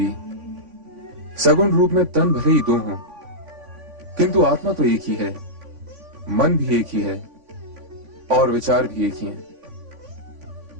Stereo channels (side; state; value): left; late; 3.5 ms